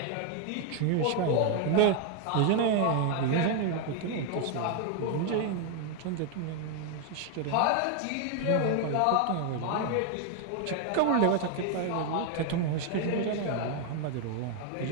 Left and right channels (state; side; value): different; both; correlation 0.01